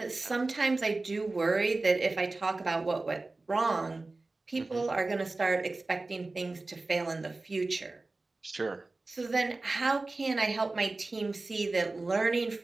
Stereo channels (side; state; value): left; quieter; 3.3 dB